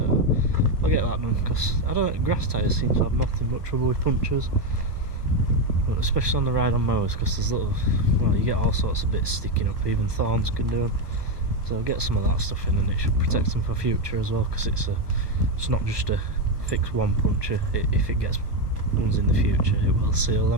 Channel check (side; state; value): left; late; 1.2 ms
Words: I'll get that done, because I don't know, grass tyres seem to have nothing but trouble with punctures, but especially on the ride on mowers, because there's little, well, you get all sorts of bits sticking up, even thorns can do them. So I'll get some of that stuff in, and it should protect them for future as well, because it's not just a fix one puncture. If it gets ones in the future, it will seal